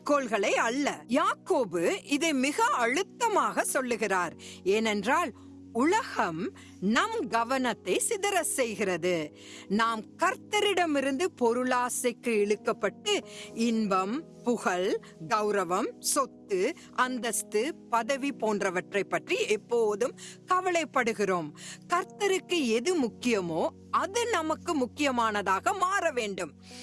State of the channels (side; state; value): both; identical; correlation 1.00